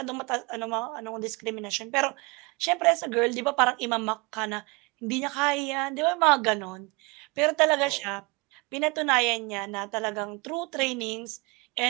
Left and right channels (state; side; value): quieter; left; 27.5 dB